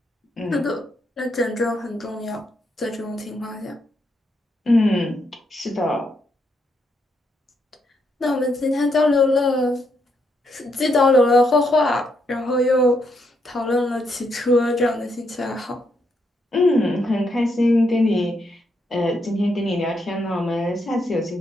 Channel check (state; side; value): normal; both; correlation 0.78